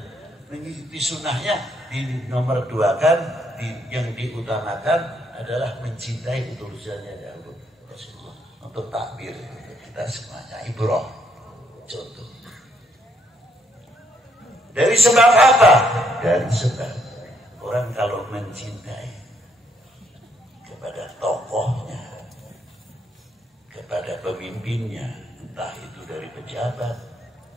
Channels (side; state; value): both; normal; correlation 0.72